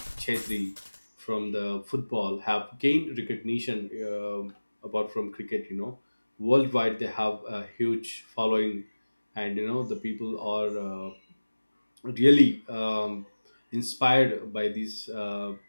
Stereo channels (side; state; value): both; inverted; correlation -1.00